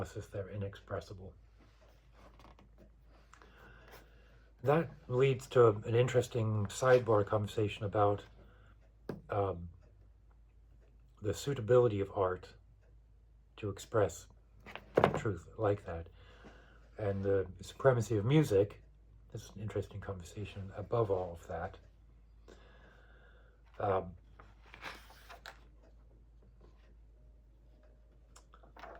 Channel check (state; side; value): identical; both; correlation 1.00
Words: they're inexpressible. That leads to an interesting sidebar conversation about the suitability of art to express truth like that, and the supremacy of music. This is an interesting conversation above all of that.